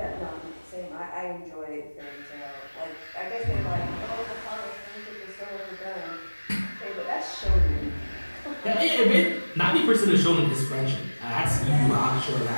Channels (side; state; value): both; inverted; correlation -1.00